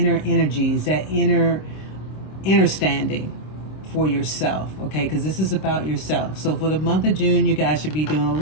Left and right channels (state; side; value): late; right; 26 ms